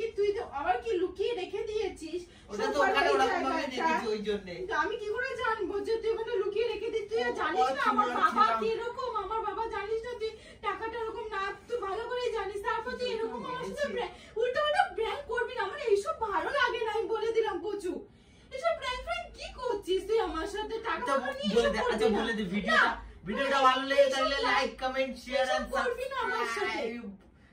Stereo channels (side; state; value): both; identical; correlation 1.00